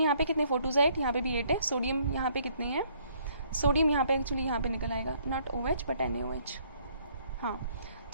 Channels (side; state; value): both; inverted; correlation -0.64